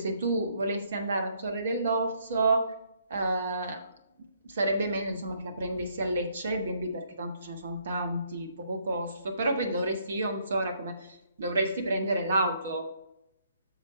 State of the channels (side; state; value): both; inverted; correlation -0.69